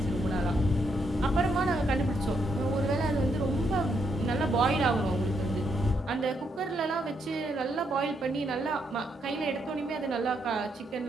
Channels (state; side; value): normal; both; correlation 0.77